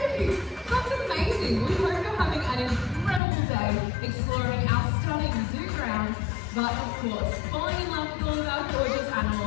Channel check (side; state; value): right; drops out; at 3.2 s